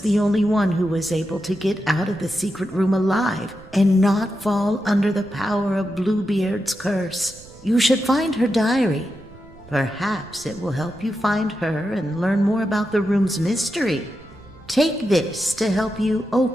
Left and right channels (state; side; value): noise; right; rumble, 22 dB below the sound